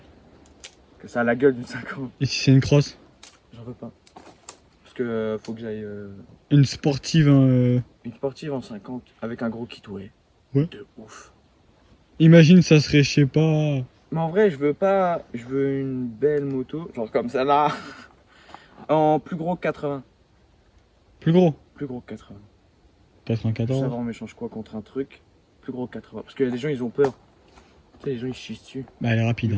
Que ça a la gueule d'une 50. Et si c'est une crosse? J'en veux pas. Parce que faut que j'aille Une sportive. une sportive en 50 avec un gros kit ouais. Ouais. De ouf. Imagine, ça serait, je sais pas. Mais en vrai, je veux pas. Je veux une belle moto, genre comme ça là. En plus gros que 80. Plus gros. Plus gros que 80. 94. Ça va, on m'échange quoi contre un truc plus gros que 80. Parce que les gens ils ont peur. Tu sais, les gens ils chient dessus. Bah, elle est rapide. Du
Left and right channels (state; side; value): identical; both; correlation 1.00